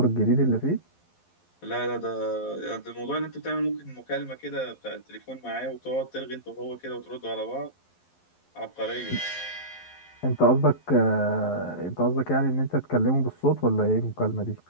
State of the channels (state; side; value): late; right; 11 ms